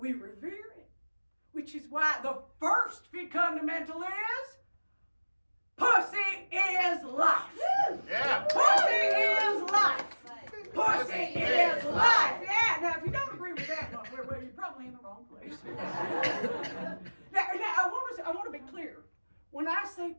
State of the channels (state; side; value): inverted; both; correlation -1.00